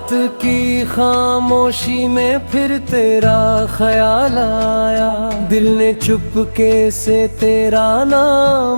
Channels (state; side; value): inverted; both; correlation -1.00